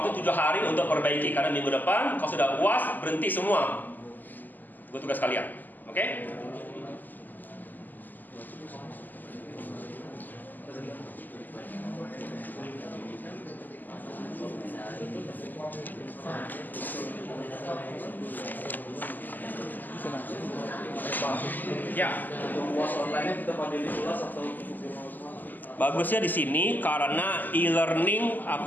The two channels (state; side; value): late; right; 0.086 ms